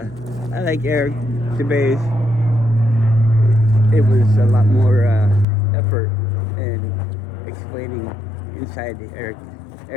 like Eric DeBay's. It was a lot more effort in explaining inside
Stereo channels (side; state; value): right; drops out; at 5.5 s